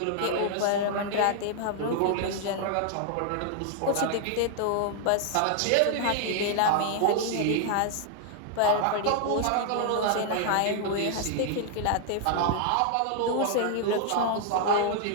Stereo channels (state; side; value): different; both; correlation 0.00